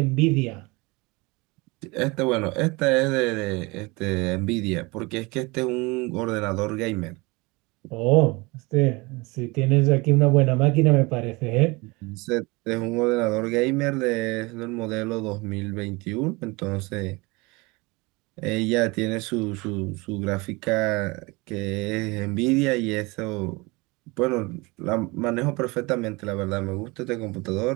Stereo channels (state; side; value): quieter; left; 25.2 dB